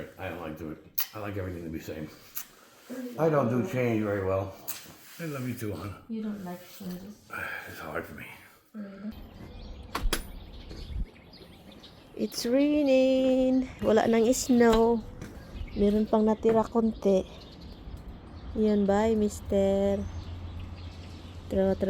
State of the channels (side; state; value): both; identical; correlation 1.00